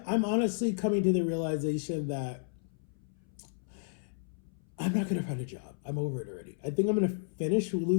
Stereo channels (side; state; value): right; silent; 56 dB below the other